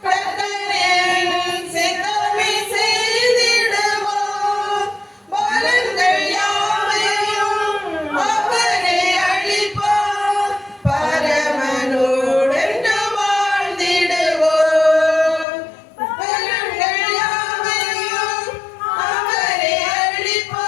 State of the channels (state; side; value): drops out; right; at 15.5 s